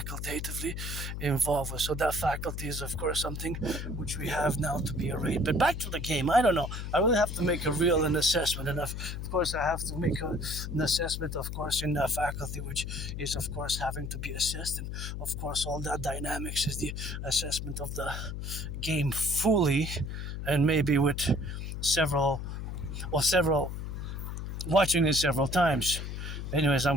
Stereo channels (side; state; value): left; noise; hum, 5 dB below the sound